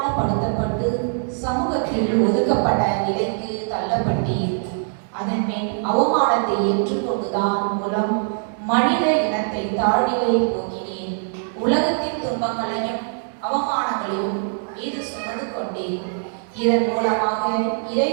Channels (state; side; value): silent; left; 64 dB below the other